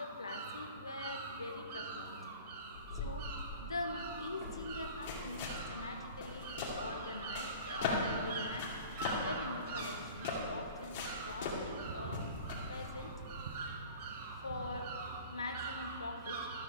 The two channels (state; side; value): inverted; both; correlation -0.41